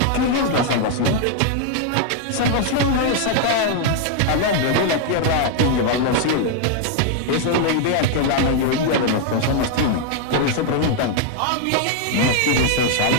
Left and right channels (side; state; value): both; different; correlation 0.00